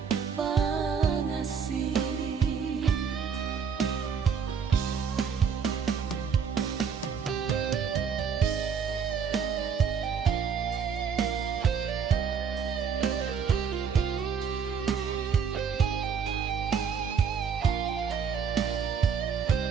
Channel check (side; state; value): left; quieter; 6.6 dB